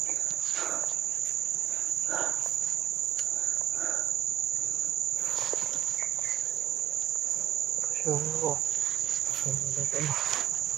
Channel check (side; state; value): left; quieter; 11.1 dB